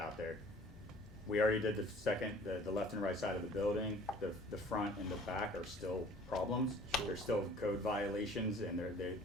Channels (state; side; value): normal; both; correlation 0.51